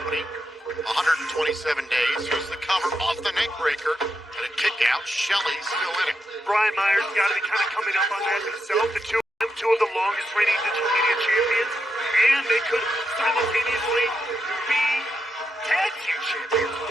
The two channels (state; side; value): normal; both; correlation 0.84